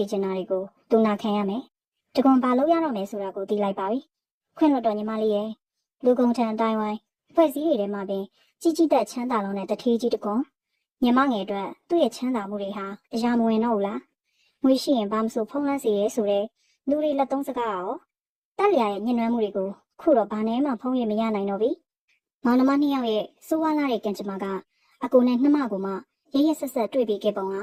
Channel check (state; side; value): identical; both; correlation 1.00